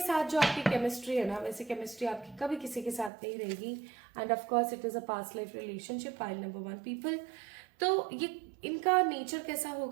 जो आपकी केमिस्ट्री है ना, वैसे केमिस्ट्री आपकी कभी किसी के साथ नहीं रहेगी। End of course it is a past life relationship, pile number 1 people. तो ये इनका नेचर कैसा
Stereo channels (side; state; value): left; drops out; at 3.1 s